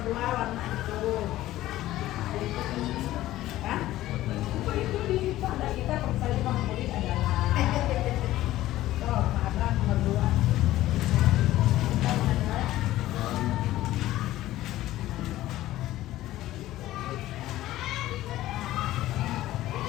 dua warna itu. Hah? Itu di pada kita saya favorit adalah ada nomor dua.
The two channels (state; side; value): quieter; right; 15.2 dB